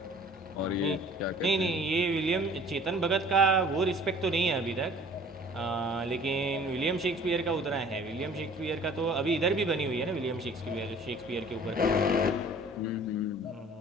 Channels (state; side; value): normal; both; correlation 0.50